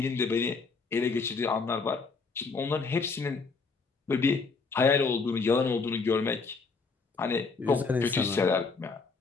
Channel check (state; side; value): quieter; right; 4.5 dB